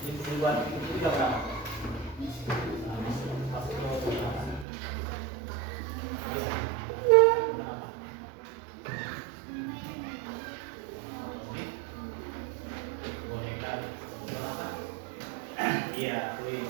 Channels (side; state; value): left; drops out; at 4.7 s